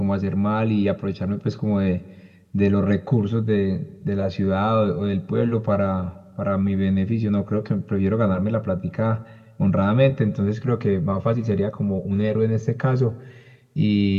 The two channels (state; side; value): identical; both; correlation 1.00